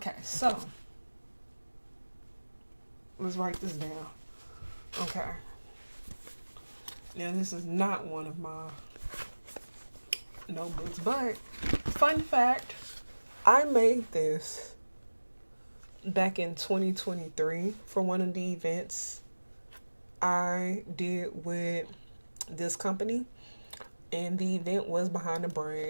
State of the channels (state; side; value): inverted; both; correlation -1.00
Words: so let's write this down. Okay, now this is not one of my notebooks, but fun fact, I made this back in 2023 for one of the events I did with this company, and the event was behind the